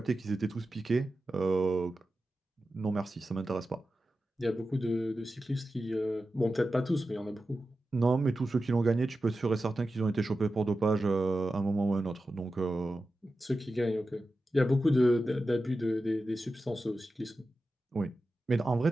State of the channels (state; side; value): normal; both; correlation 0.92